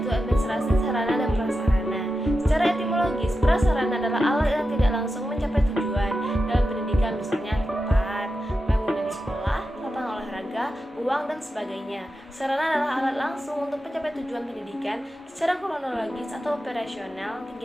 administrasi sarana dan prasarana. Secara etimologis, prasarana adalah alat yang tidak langsung mencapai tujuan dalam pendidikan, misalnya tempat, bangunan sekolah, lapangan olahraga, uang, dan sebagainya. Sarana adalah alat langsung untuk mencapai tujuan pendidikan. Secara kronologis atau operasional,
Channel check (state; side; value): normal; both; correlation 0.90